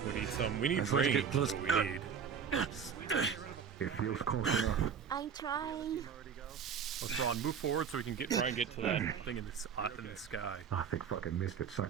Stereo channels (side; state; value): left; quieter; 7.0 dB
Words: We need some. We need Let's rain. get close. What we need. It feels close enough. I'm trying. Let's Ron, move forward so we can try and get to that thing in the sky. I think fucking missed it.